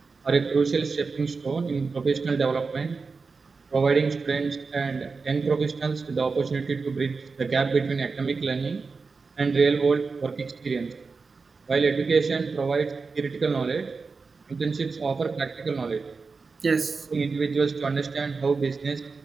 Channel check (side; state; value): left; quieter; 4.5 dB